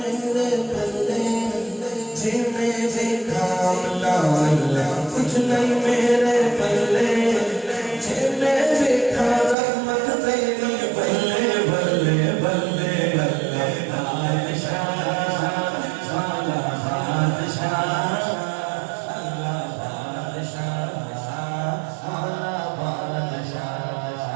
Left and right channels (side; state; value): left; drops out; at 9.6 s